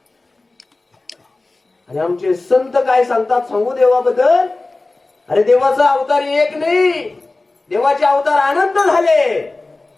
आणि आमचे संत काय सांगतात सांगू देवाबद्दल? अरे देवाचा अवतार एक नाही, देवाचे अवतार अनंत झाले.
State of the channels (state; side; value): quieter; right; 3.2 dB